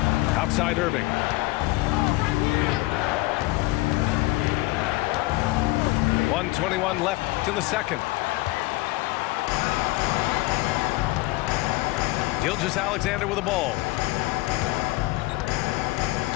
Outside Irving. .121 left in the second. Gilgeous-Alexander with the ball.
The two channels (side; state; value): right; quieter; 20.7 dB